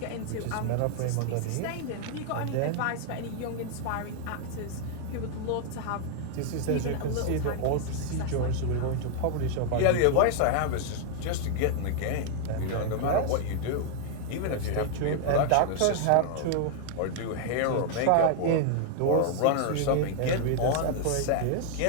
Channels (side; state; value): both; different; correlation 0.00